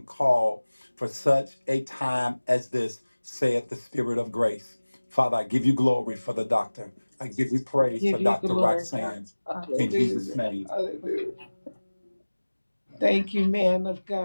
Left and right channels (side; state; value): both; inverted; correlation -1.00